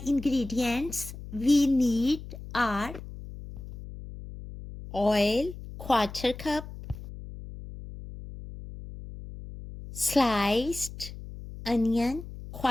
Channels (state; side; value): noise; left; hum, 13 dB below the sound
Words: ingredients we need are oil, quarter cup, sliced onion,